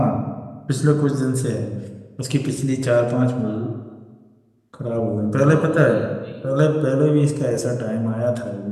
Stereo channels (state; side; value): identical; both; correlation 1.00